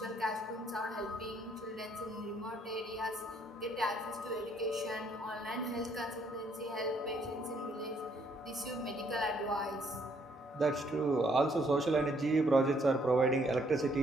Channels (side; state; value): both; normal; correlation 0.68